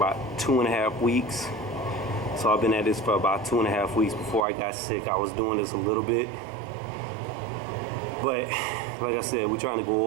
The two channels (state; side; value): drops out; left; at 4.5 s